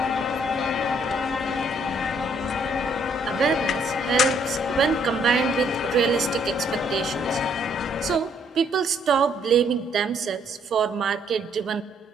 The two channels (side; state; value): both; normal; correlation 0.67